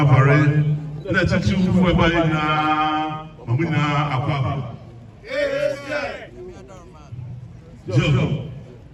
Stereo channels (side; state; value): both; identical; correlation 1.00